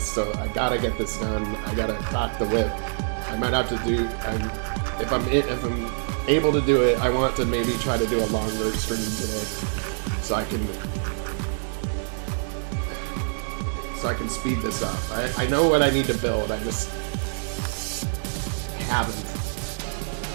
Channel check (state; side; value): silent; left; digital silence